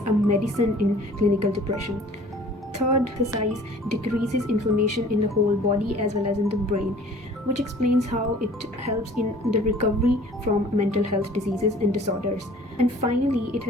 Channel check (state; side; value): normal; both; correlation 0.50